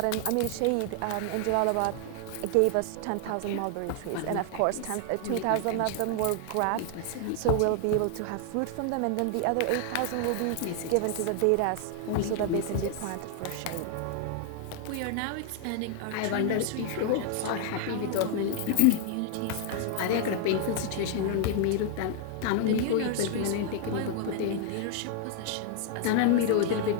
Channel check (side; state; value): both; different; correlation 0.00